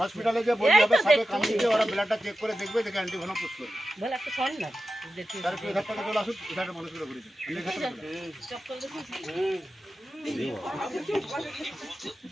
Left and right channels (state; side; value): normal; both; correlation 0.92